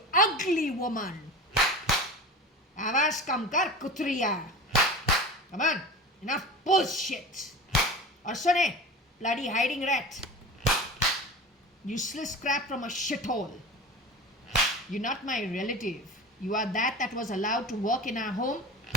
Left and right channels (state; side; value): normal; both; correlation 0.33